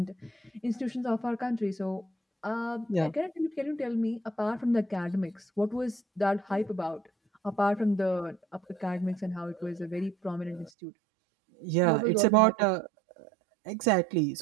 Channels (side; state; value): left; drops out; at 10.7 s